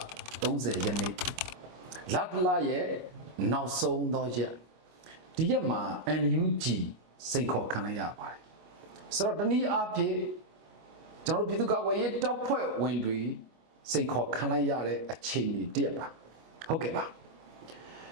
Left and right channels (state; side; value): late; left; 25 ms